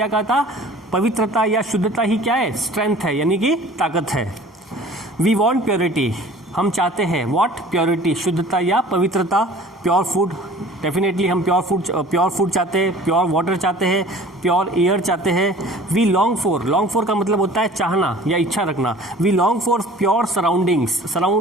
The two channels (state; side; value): normal; both; correlation 0.47